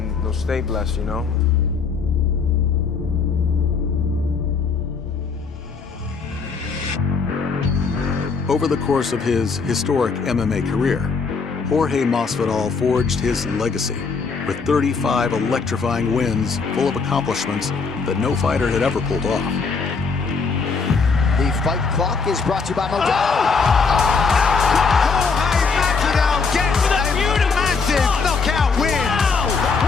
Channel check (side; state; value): right; quieter; 5.0 dB